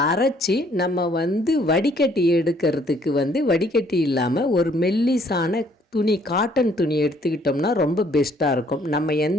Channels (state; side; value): normal; both; correlation 0.63